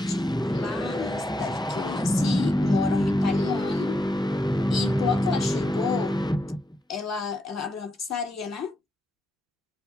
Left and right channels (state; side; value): normal; both; correlation 0.82